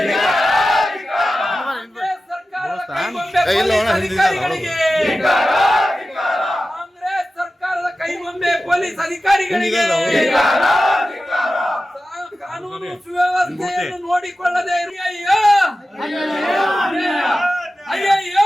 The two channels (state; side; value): normal; both; correlation 0.94